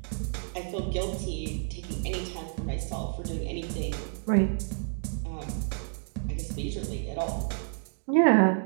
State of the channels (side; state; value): left; silent; 58 dB below the other